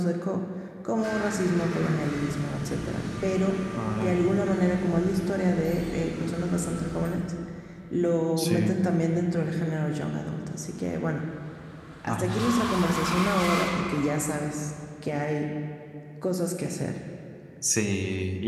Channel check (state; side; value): identical; both; correlation 1.00